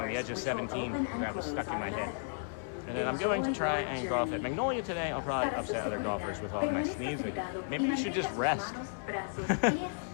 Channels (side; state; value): right; silent; 55 dB below the other